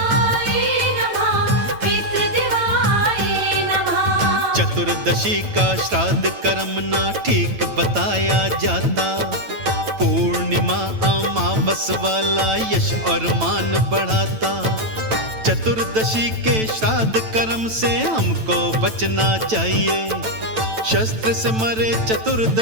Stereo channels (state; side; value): late; left; 9.1 ms